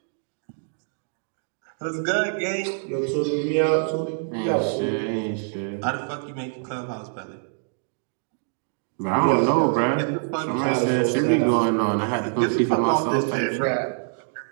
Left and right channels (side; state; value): left; silent; digital silence